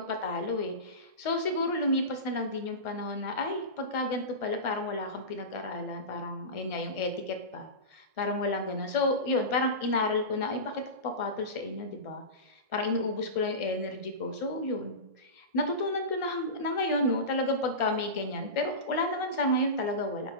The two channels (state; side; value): late; left; 1.6 ms